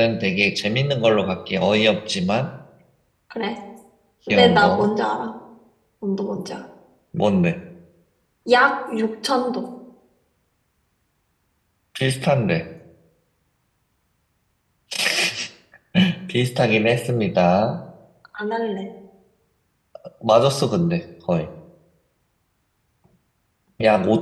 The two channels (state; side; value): identical; both; correlation 1.00